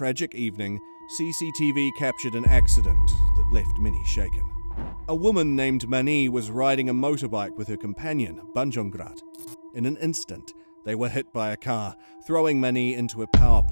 evening, CCTV captured an accident that left many shaken. A woman named Mani was riding a motorbike with her companion, Banjongrat. In an instant, they were hit by a car, throwing Mani into a power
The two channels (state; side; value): inverted; both; correlation -1.00